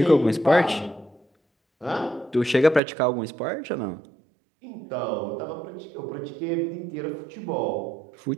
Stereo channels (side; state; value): left; drops out; at 2.8 s